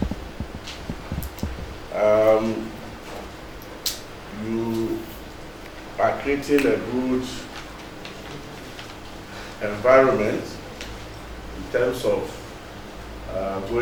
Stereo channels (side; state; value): both; identical; correlation 1.00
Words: you are creating a good environment in terms of